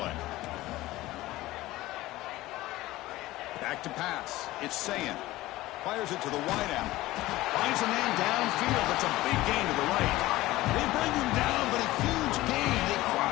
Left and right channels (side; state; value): right; quieter; 17.5 dB